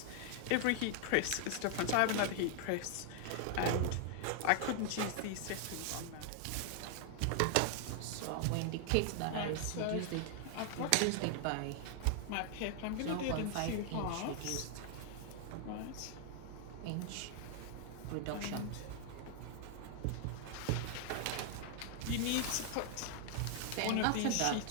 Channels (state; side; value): different; both; correlation 0.00